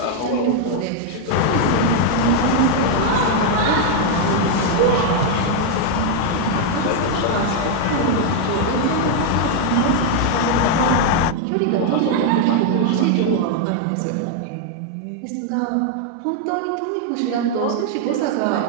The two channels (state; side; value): different; both; correlation 0.00